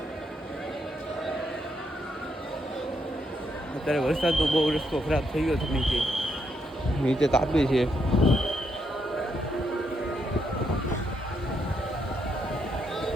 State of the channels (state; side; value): normal; both; correlation 0.78